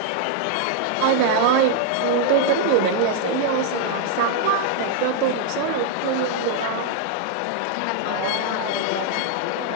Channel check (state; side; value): different; both; correlation 0.00